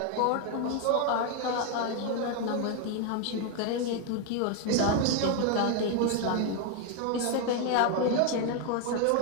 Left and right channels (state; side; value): different; both; correlation 0.01